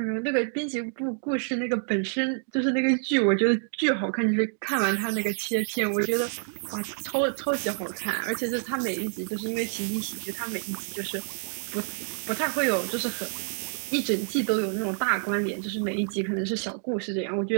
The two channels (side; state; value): left; silent; 60 dB below the other